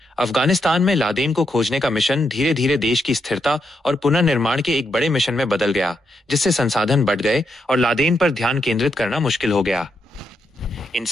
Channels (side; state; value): both; normal; correlation 0.81